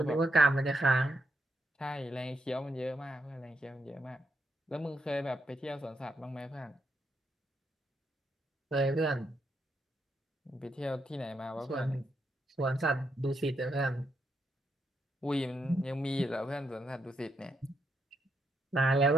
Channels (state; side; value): normal; both; correlation 0.80